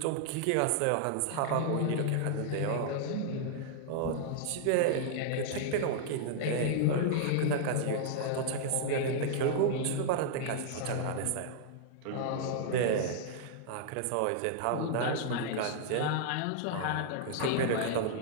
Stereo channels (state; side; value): different; both; correlation -0.01